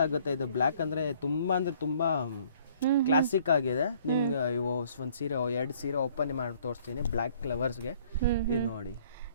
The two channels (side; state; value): both; inverted; correlation -0.59